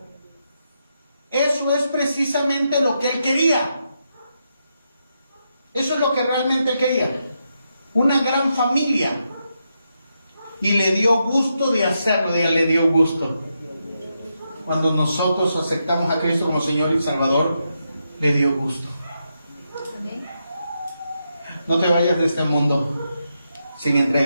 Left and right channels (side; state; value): both; inverted; correlation -0.83